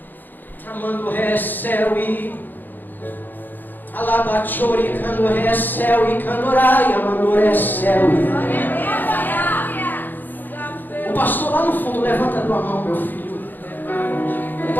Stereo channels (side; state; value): right; late; 0.089 ms